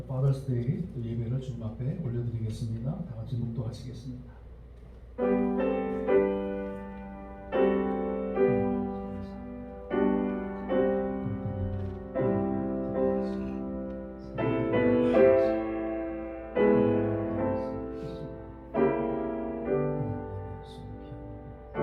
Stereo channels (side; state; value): both; identical; correlation 1.00